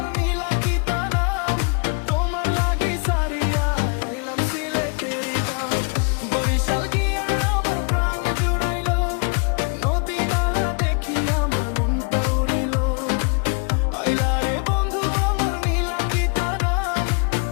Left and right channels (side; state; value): right; quieter; 38.2 dB